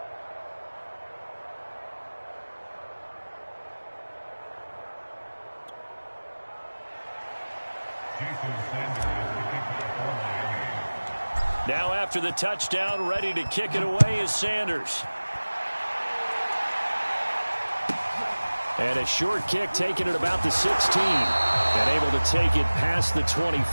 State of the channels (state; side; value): inverted; both; correlation -1.00